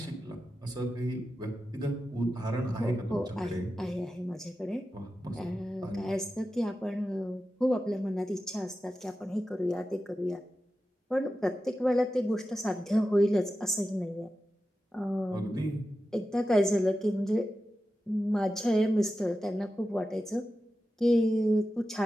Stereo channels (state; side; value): normal; both; correlation 0.92